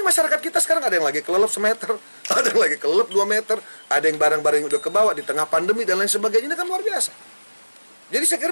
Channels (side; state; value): both; inverted; correlation -1.00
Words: masyarakat kita sekarang ada yang lagi kelelep semeter, ada yang lagi kelelep 2 meter, ada yang barang-barang yang udah kebawa di tengah pandemi dan lain sebagainya. Ini kan luar biasa. Jadi saya kira